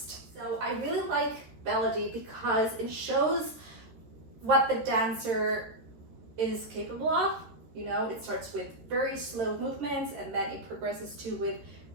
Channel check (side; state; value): left; late; 13 ms